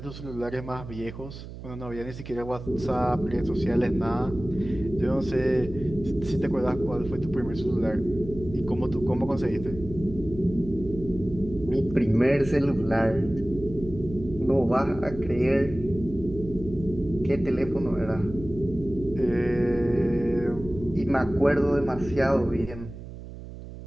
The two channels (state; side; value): noise; right; hum, 13 dB below the sound